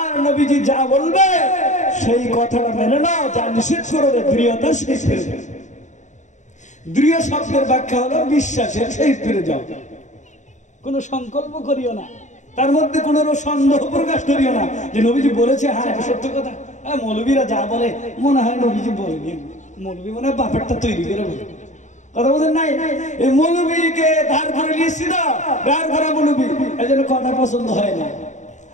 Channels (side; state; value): right; late; 0.35 ms